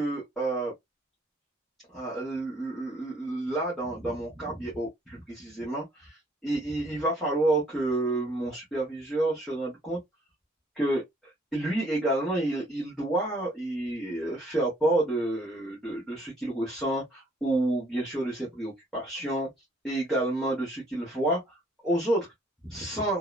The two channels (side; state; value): both; normal; correlation 0.63